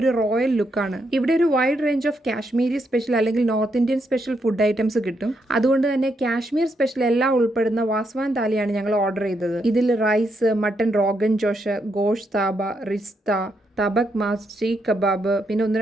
റോയൽ ലുക്കാണ്. ഇവിടെ ഒരു wide range of Kashmiri special അല്ലെങ്കിൽ north Indian special food items കിട്ടും. അതുകൊണ്ട് തന്നെ കാശ്മീർ സ്പെഷ്യൽ എല്ലാം ഉൾപ്പെടുന്ന വാസ്വാൻ താലിയാണ് ഞങ്ങൾ ഓർഡർ ചെയ്തത്. ഇതിൽ rice, mutton rogan josh, gushtaba, rista, tabak maaz, seekh kebab, പിന്നെ ഒന്ന്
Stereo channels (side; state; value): both; normal; correlation 0.79